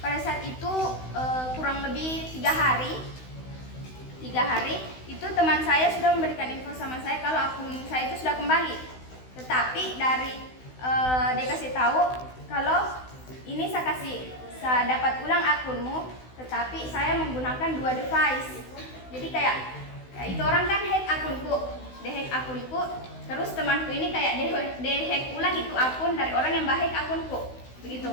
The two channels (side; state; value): right; late; 16 ms